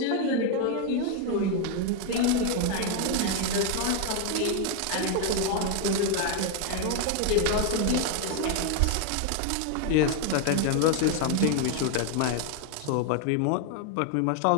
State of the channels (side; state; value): both; different; correlation 0.01